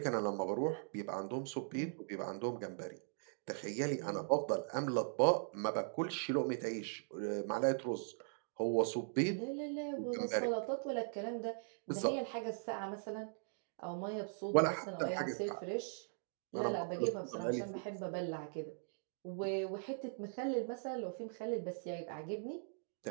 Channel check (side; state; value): left; silent; digital silence